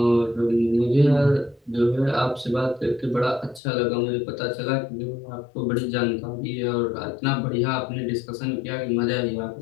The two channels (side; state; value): right; drops out; at 3.6 s